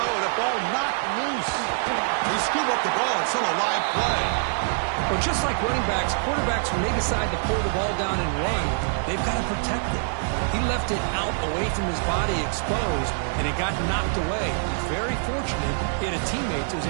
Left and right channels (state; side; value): silent; left; digital silence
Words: The ball knocked loose. They scoop up the ball. It's still a live play. Well, just like running backs, quarterbacks, when they decide to pull the ball down and run, they've got to protect it. He left it out away from his body exposed, and it got knocked away. He's very fortunate he had a teammate who was